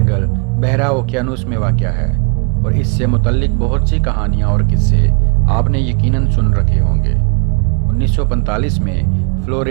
بحرہ اوقیانوس میں واقع ہے اور اس سے متعلق بہت سی کہانیاں اور قصے آپ نے یقیناً سن رکھے ہوں گے۔ 1945 میں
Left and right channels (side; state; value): left; quieter; 35.8 dB